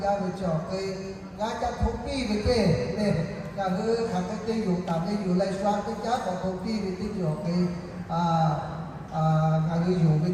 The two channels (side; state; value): both; identical; correlation 1.00